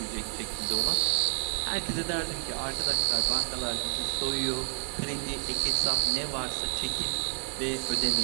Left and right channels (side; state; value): left; silent; digital silence